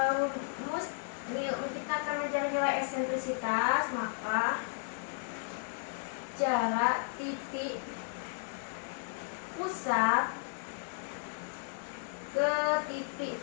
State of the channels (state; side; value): silent; right; digital silence